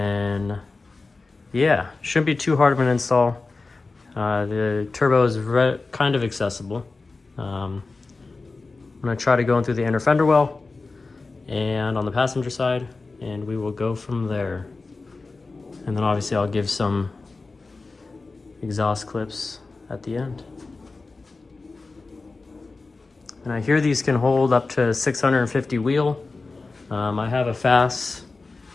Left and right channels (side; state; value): right; quieter; 3.7 dB